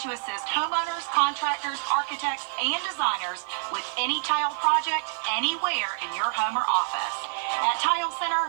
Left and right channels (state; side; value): silent; left; digital silence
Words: to assist homeowners, contractors, architects, and designers with any tile project anywhere in your home or office. At Tile